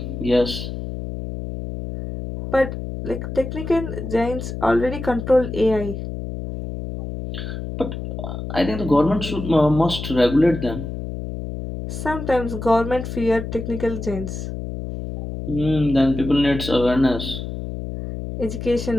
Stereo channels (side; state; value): left; noise; hum, 7 dB below the sound